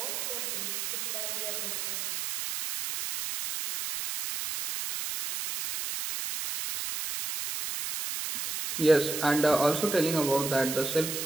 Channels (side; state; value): right; noise; hiss, 4 dB below the sound